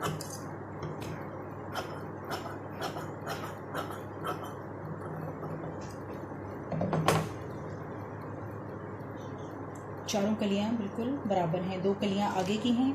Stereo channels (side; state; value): both; identical; correlation 1.00